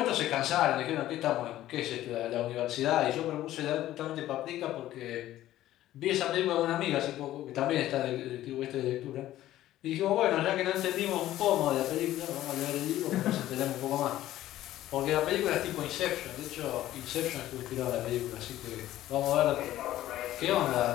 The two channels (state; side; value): quieter; right; 14.1 dB